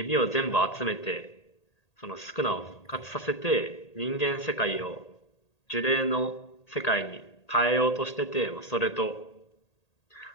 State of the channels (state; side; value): late; right; 1.8 ms